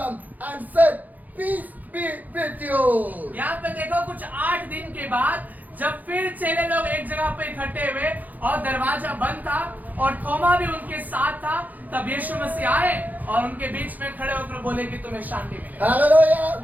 and said, "Peace be with you." यहाँ पे देखो कुछ 8 दिन के बाद जब फिर चेले लोग एक जगह पे इकट्ठे हुए और दरवाजा बंद था और थोमा भी उनके साथ था, तब यीशु मसीह आए और उनके बीच में खड़े होकर बोले कि तुम्हें शांति मिले। Hallelujah.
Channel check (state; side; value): late; left; 0.081 ms